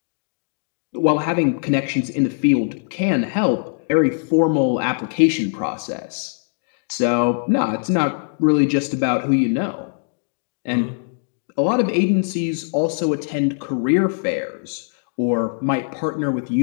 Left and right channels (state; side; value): silent; right; digital silence